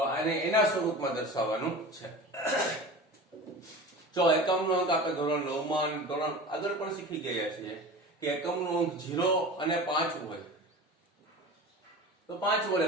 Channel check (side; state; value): both; normal; correlation 0.34